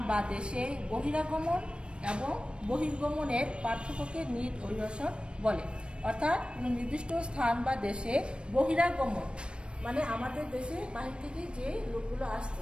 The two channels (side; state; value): left; late; 0.056 ms